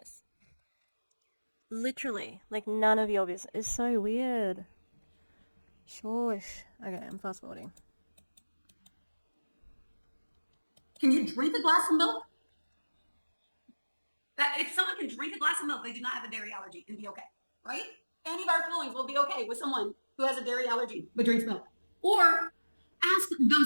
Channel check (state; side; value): inverted; both; correlation -1.00